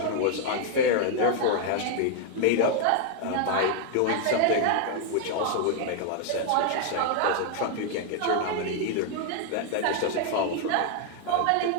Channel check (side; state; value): both; different; correlation 0.00